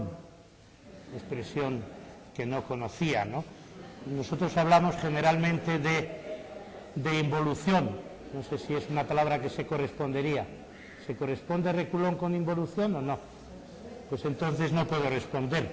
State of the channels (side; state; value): both; identical; correlation 1.00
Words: expresión que no conocía, ¿no? Nosotros hablamos generalmente de involución. No sé si es una palabra que se correspondería. ¿Se corresponde reculón con involución o no? Pues entonces no puedo responder.